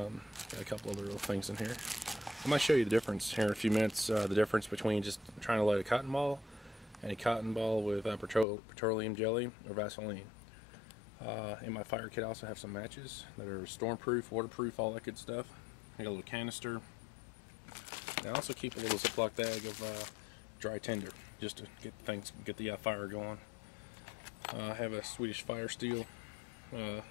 a couple other little things in here. I might show you the difference here in a few minutes. The difference between just trying to light a cotton ball and a cotton ball with petroleum jelly or Vaseline. In my fire kit I also have some matches that are stormproof, waterproof, all that good stuff. I got a little canister. And I also keep a little Ziploc bag of dry tinder just to get the fire going. I have a Swedish Fire Steel to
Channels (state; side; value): drops out; right; at 8.5 s